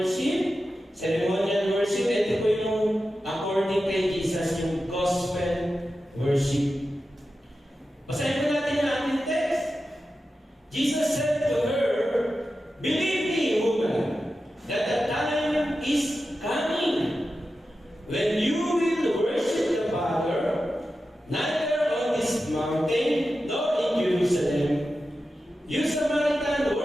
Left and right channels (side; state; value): both; normal; correlation 0.92